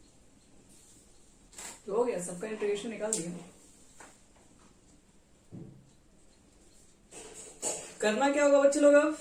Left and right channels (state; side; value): identical; both; correlation 1.00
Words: तो हो गया, सबका इंटीग्रेशन निकाल दिया। करना क्या होगा बच्चे लोग,